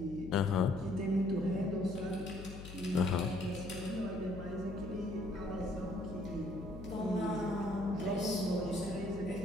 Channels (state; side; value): noise; left; hum, 12 dB below the sound